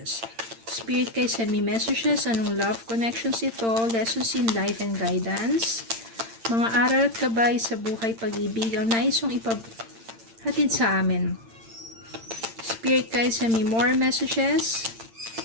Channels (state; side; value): late; left; 8.8 ms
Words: Spirit guys, send me messages. Anong love connections ito? Lessons in life and guidance. Mga aral at gabay sa buhay pag-ibig. Ang nais yung ipaghatid sa amin. Spirit guys, send me more messages.